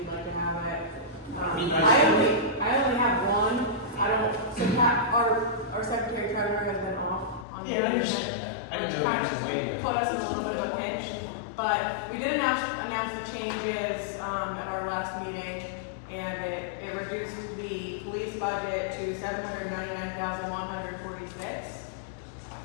like to have it. Be nice I to only have one. I don't, so Pat, our secretary treasurer has been off on Yeah, I vacation, understand that. I which didn't know kind what you of waited. put us in a little bit of a pinch. But we did announce the changes, at our last meeting, and it reduced the police budget to $799,146.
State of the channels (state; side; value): drops out; right; at 7.5 s